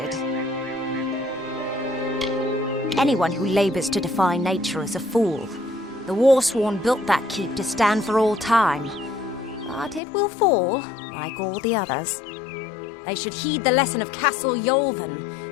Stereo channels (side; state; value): right; drops out; at 10.0 s